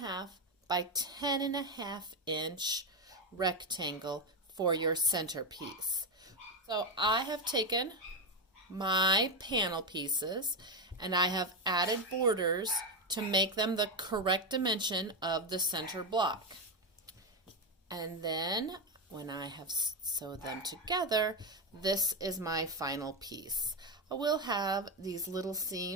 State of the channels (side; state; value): both; normal; correlation 0.09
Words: by 10.5 inch rectangle for your center piece. So I have taken my panel pieces and I have added borders to make them the correct dimension of the center block. And then when I have sewed them together, this is my final piece. I will have these little